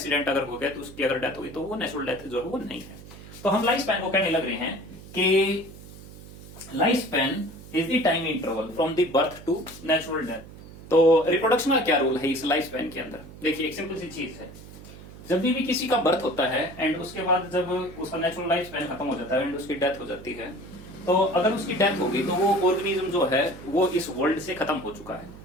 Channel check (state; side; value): noise; right; hum, 17 dB below the sound